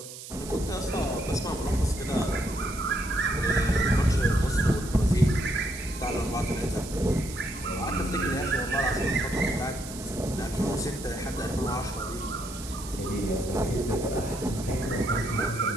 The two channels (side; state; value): right; noise; hiss, 13 dB below the sound